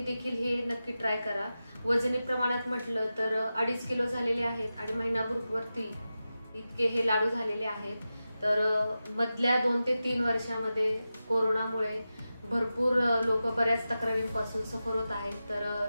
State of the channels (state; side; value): inverted; both; correlation -0.93